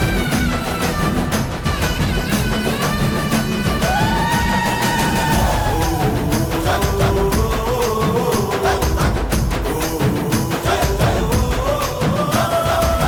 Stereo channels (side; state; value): both; identical; correlation 1.00